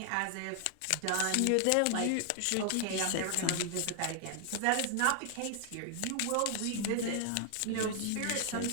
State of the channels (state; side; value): different; both; correlation 0.00